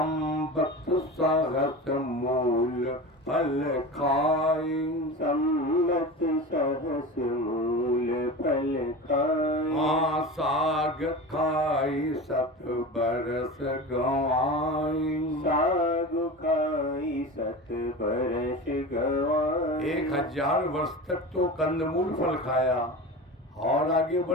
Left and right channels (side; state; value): both; normal; correlation 0.30